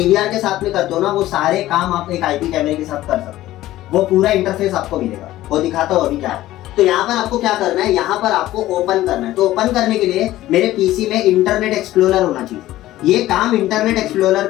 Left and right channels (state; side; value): quieter; right; 15.2 dB